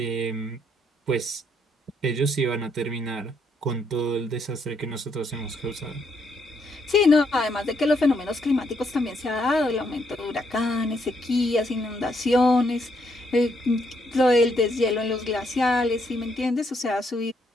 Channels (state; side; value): normal; both; correlation 0.74